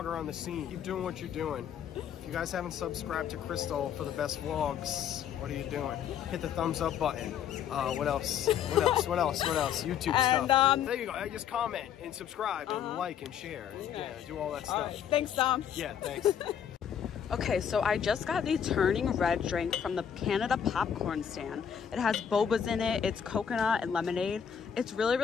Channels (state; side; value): quieter; right; 8.5 dB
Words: on the scene. Keep doing what you're doing. If you guys haven't subscribed to Krystal for the best vlogs, what are you doing? Hit the thumbs up button. What else? What else? What else? What else? YouTube stuff. There you go. Just comment and subscribe and like and share. And, yeah, do all that stuff. All right. Thanks, Tom. Yeah, thanks. Okay, so I just got the Turning Red drink from the Canada popcorn stand. It has bobas in it. It's coconut and lemonade. It's really,